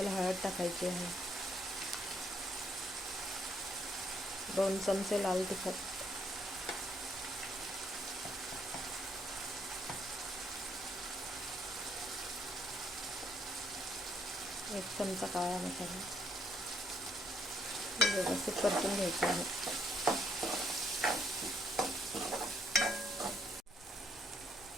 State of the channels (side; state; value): both; normal; correlation 0.71